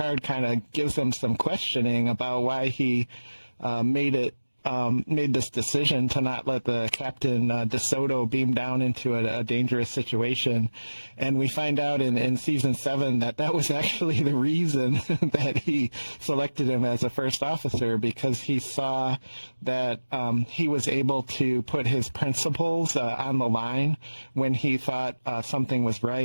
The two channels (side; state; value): both; inverted; correlation -1.00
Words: kind of gives them some questioning about why he made this decision to not let the Captain DeSoto beam down into a dangerous situation. And we find out in season 7 that was actually the reason that he selected him as a first officer, because he saw that he was able to put his principles on the line when he thought something was